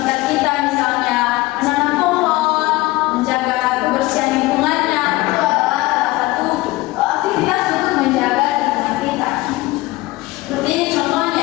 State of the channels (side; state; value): right; quieter; 20.0 dB